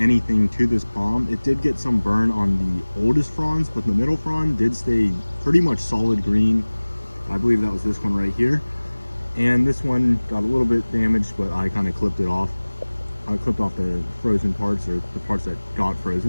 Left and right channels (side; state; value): both; inverted; correlation -1.00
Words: to this palm. It did get some burn on the oldest fronds, but the middle frond did stay pretty much solid green. I believe that was this one right here. And this one got a little bit damaged, but I kind of clipped it off. I clipped off the frozen parts, or the parts that got